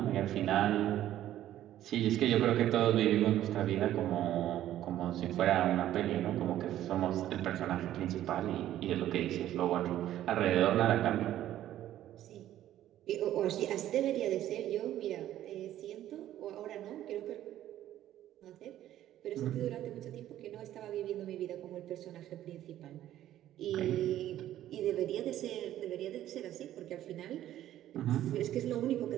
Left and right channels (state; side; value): quieter; left; 12.7 dB